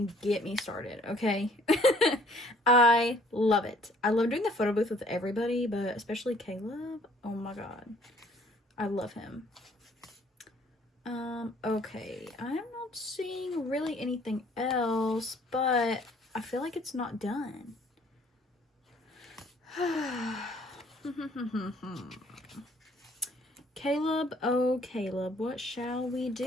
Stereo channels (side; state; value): both; normal; correlation 0.59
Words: get me started, okay? I love it. I love doing the photo booth with everybody, but especially Caleb. Oh my god. I love him. Okay. I'm not seeing really anything else, but I feel like it's not done. Caleb, oh Caleb, what shall we